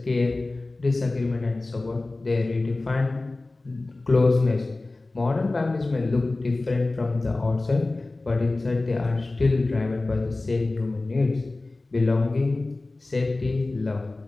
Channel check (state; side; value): quieter; right; 3.1 dB